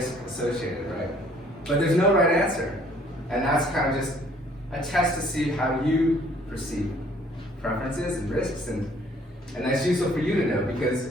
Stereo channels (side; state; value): both; normal; correlation 0.59